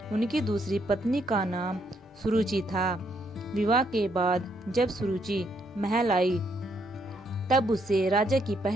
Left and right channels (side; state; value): both; normal; correlation 0.74